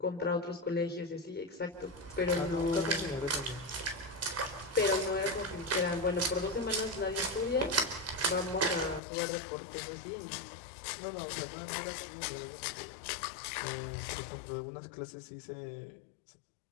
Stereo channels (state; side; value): drops out; right; at 9.0 s